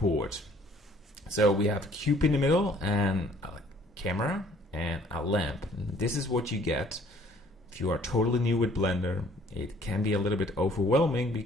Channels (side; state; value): both; normal; correlation 0.58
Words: So we have a cube in the middle and a camera and a lamp. This is what you get. If you are totally new with Blender, it can be a little bit overwhelming